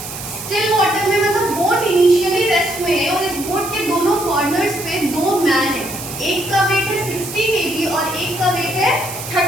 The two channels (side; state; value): right; noise; hiss, 9 dB below the sound